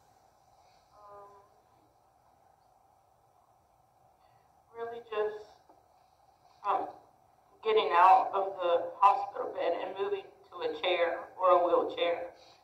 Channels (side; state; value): both; identical; correlation 1.00